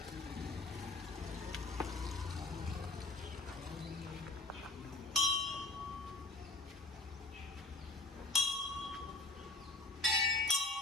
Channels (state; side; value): quieter; right; 3.2 dB